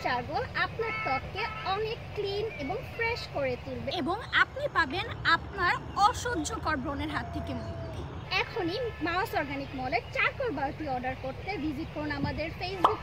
চারকোল আপনার ত্বককে অনেক ক্লিন এবং ফ্রেশ করে তুলবে এবং আপনি পাবেন আপনার অসহ্যকর ব্রণের হাত থেকে মুক্তি। এখনই মাউস অর্গানিক মলের চারকোল বারটি অর্ডার করতে ভিজিট করুন আমাদের ফেসবুক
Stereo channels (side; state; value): both; identical; correlation 1.00